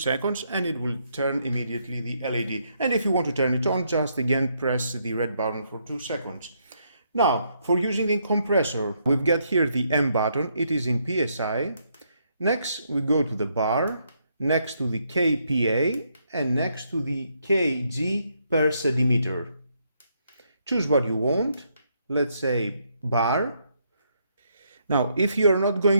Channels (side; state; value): both; inverted; correlation -0.75